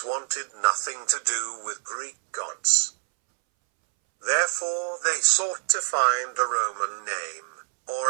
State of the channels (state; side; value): silent; left; 61 dB below the other